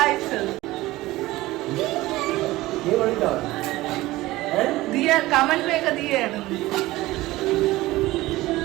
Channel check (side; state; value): left; quieter; 18.1 dB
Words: നീ കണ്ടോ? ദിയ കമന്റ് മേക്ക ദിയാണ്.